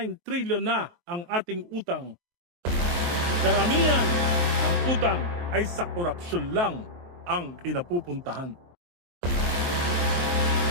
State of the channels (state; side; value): late; left; 23 ms